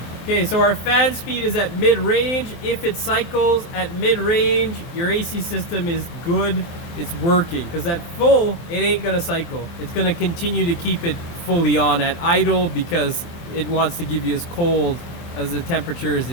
Okay, so our fan speed is at mid-range. If it cycles at mid-range, your AC system is good. It's working. Because at full, it ain't gonna cycle. It's gonna continue to keep it fully on at idle because it wants to give you as cold as the temperature as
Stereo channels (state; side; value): late; right; 23 ms